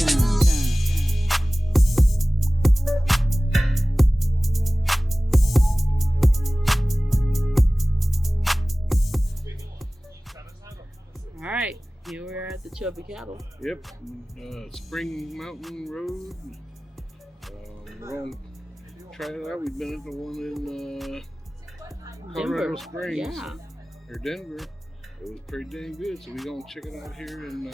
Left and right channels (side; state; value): both; normal; correlation 0.98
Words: All right, here we are at the Chubby Cattle. Yep, Spring Mountain Road. We're going to try it out. We've been at the one in Coronado Springs, or Denver. It was pretty dang good, so we're going to check it out here in